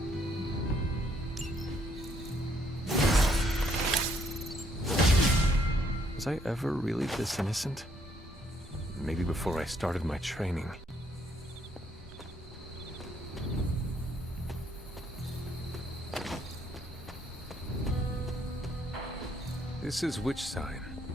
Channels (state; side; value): normal; both; correlation 0.70